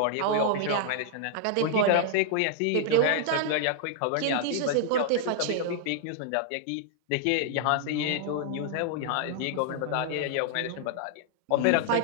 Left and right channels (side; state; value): both; different; correlation -0.01